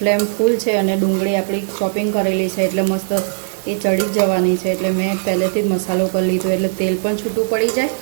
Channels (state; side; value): silent; left; 63 dB below the other